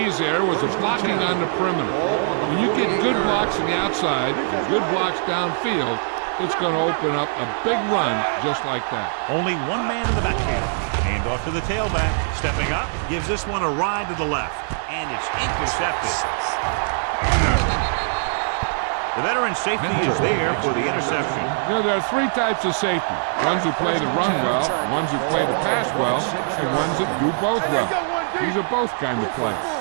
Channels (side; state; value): left; silent; digital silence